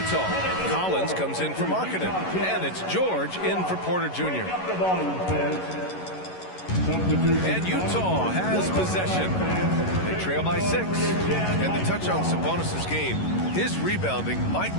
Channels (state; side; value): late; right; 11 ms